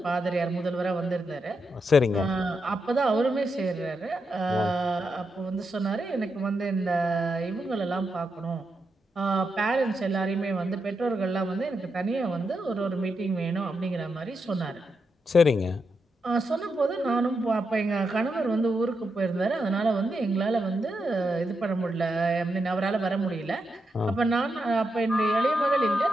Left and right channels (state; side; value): normal; both; correlation 0.84